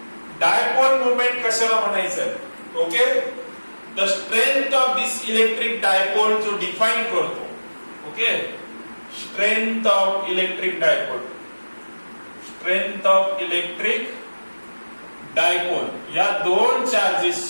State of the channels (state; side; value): inverted; both; correlation -1.00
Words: dipole moment कशाला म्हणायचं? Okay, the strength of this electric dipole जो डिफाइन करतो. Okay, strength of electric dipole, strength of electric dipole, या दोन